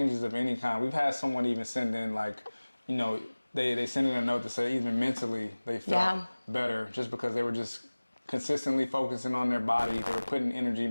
of any kind. We've had someone even send in like, they send in a note to say even mentally they felt better just because they were just consistently focusing on their body. They were putting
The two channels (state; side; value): inverted; both; correlation -1.00